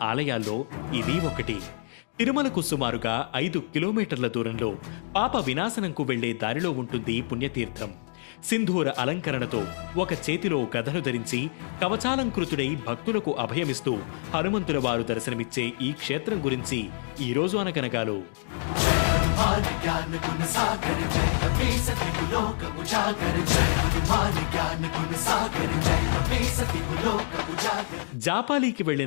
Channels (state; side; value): silent; right; digital silence